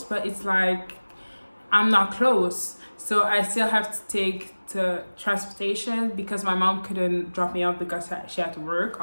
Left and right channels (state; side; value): inverted; both; correlation -1.00